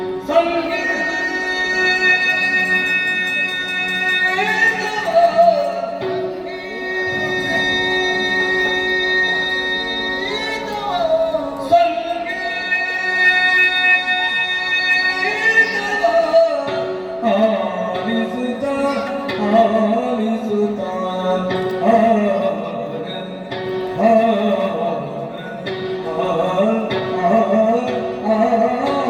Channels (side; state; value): both; identical; correlation 1.00